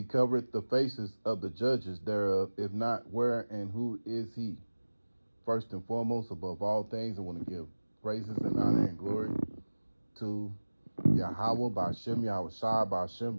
covereth the faces of the judges thereof. If not, where and who is he? First and foremost, above all things, I want to give praises and honor and glory to Yahweh, Ba'ashem, Yahweh Shai, Ba'ashem,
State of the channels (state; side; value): inverted; both; correlation -1.00